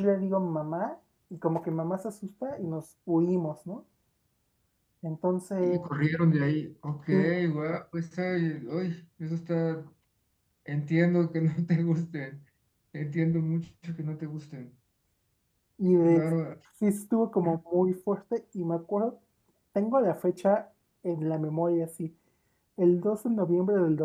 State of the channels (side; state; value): both; identical; correlation 1.00